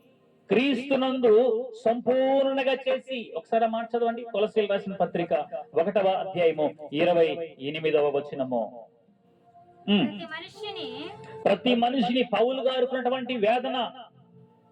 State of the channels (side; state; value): both; identical; correlation 1.00